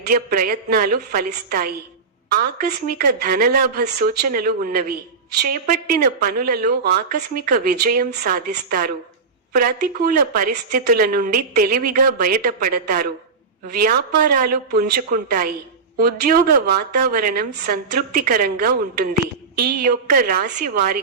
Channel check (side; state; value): left; quieter; 4.8 dB